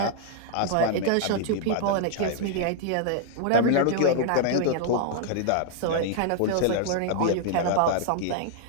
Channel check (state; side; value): different; both; correlation -0.01